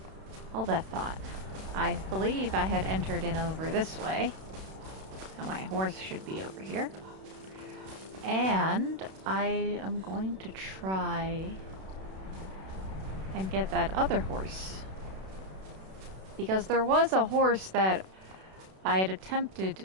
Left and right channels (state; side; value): late; left; 32 ms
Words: Hold that thought. I believe I had entered in over this way. Now my horse should be over here. And I am going to try and get that other horse. Because there was a horse that I had